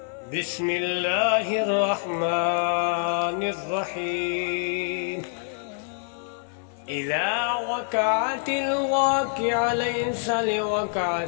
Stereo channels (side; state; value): right; silent; digital silence